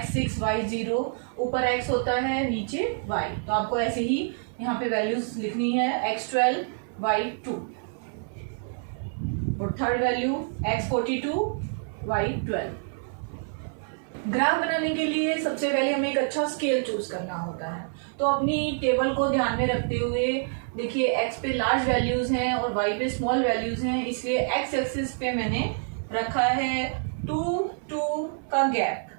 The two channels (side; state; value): left; silent; 57 dB below the other